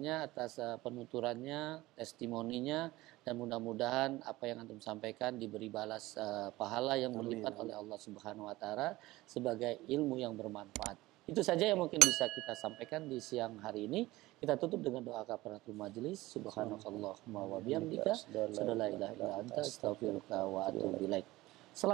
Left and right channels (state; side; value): quieter; left; 18.6 dB